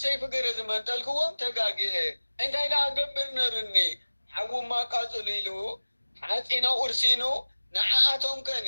ገረዝ መንጠልክዎም ተጋጊአ እንታይ ደኣ ገብር ነርኒ ሓውማ ቃፅሉ ኢሉ ሓፂና ኡርሲኑ ንዓኣቶም ከኒ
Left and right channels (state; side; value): inverted; both; correlation -1.00